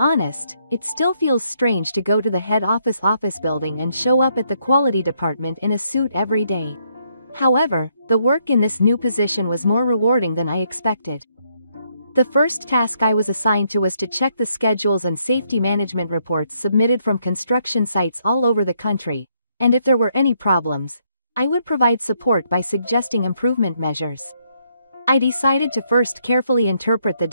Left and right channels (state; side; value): inverted; both; correlation -0.73